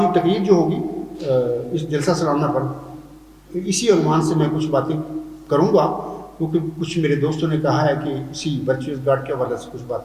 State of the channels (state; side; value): identical; both; correlation 1.00